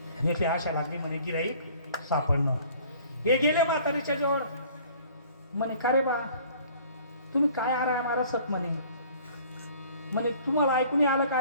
आशा लागली म्हणे गिराईक सापडणं. हे गेले म्हातारीच्या जवळ. म्हणे का रे बा तुम्ही काय आरा सत म्हणे तुम्हाला ऐकून आलं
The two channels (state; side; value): inverted; both; correlation -0.52